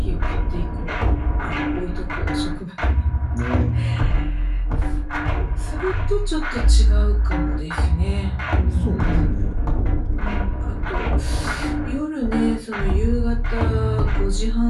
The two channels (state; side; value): identical; both; correlation 1.00